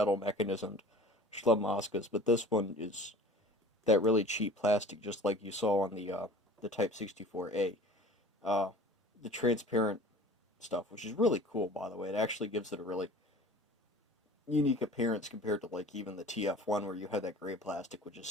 mechanismed Schlambaskas, but this one is that really cheap plastic, just like you saw on the Type 64A. Uh, the transparent stuff, which is really cool, by the way. It actually gives it a really unique appearance compared to like even the TF1, where you have that gray plastic, which is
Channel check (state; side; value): normal; both; correlation 0.43